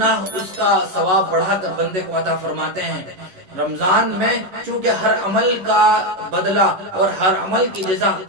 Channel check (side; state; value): left; late; 11 ms